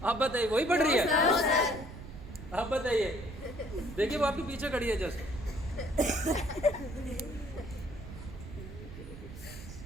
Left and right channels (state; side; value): noise; right; rumble, 12 dB below the sound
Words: आप बताइए, वही पढ़ रही है? आप बताइए। देखिए वो आपके पीछे खड़ी है जस्ट।